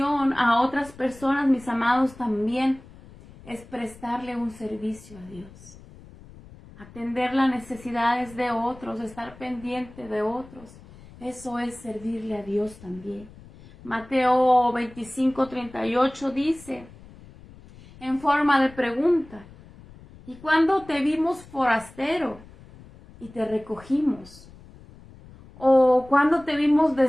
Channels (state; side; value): noise; left; rumble, 21 dB below the sound